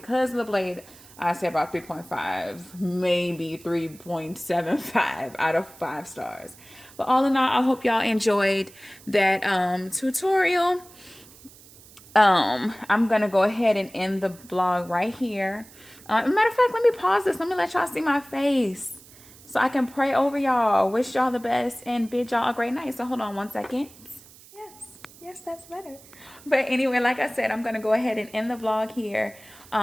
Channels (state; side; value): noise; right; hiss, 22 dB below the sound